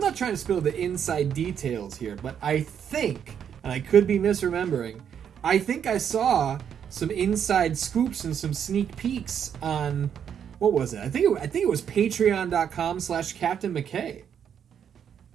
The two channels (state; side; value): quieter; left; 8.3 dB